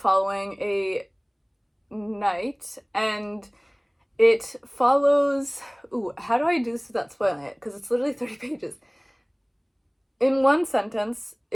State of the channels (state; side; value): identical; both; correlation 1.00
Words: a knight, and it follows, how do I do this without spoiling it? Because it's literally 30 pages. In one sentence,